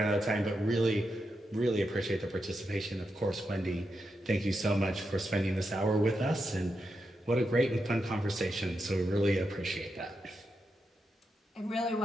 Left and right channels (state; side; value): normal; both; correlation 0.86